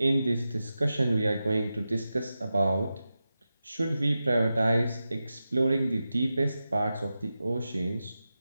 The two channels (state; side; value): inverted; both; correlation -0.92